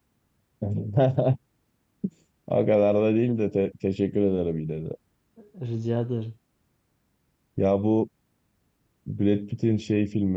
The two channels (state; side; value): identical; both; correlation 1.00